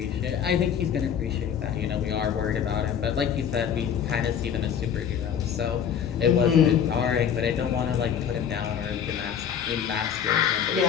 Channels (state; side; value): quieter; right; 8.2 dB